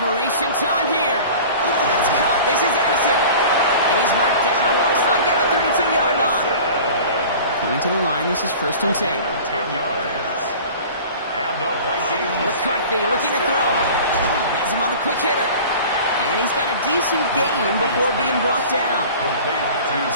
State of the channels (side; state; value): both; inverted; correlation -0.41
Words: time here. That's caught. This is Addison. And he's marked down. Looks like at the 32-yard line. Coming to the line, this is 1st and 10. 10 yards. And the Vikings. McCarthy looking to throw. Has him on the quick hitter. And he's got a decent gain before being brought down. Complete to